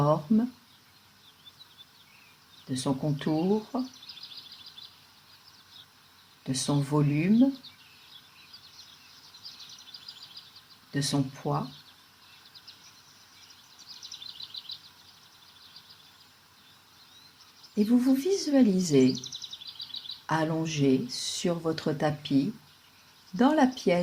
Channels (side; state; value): both; identical; correlation 1.00